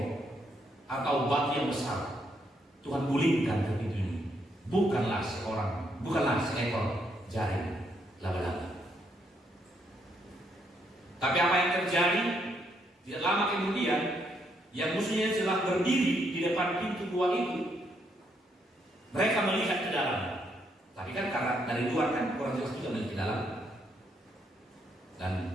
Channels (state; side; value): normal; both; correlation 0.75